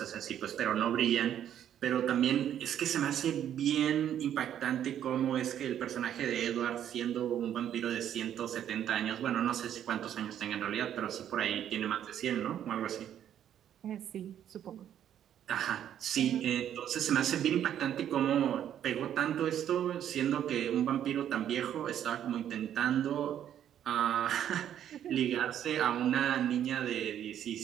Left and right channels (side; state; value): left; quieter; 10.2 dB